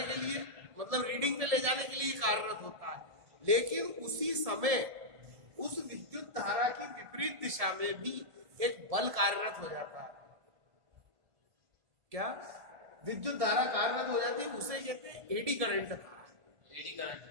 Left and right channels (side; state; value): left; late; 1.7 ms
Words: के लिए, मतलब रीडिंग पे ले जाने के लिए कार्यरत होता है, लेकिन उसी समय उस विद्युत धारा की विपरीत दिशा में भी एक बल कार्यरत हो जाता है। क्या विद्युत धारा कार्यरत हो जाती है, उसे कहते हैं eddy current. Eddy